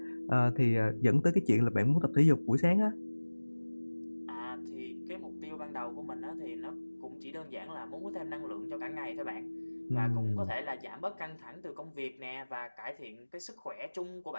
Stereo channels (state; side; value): inverted; both; correlation -1.00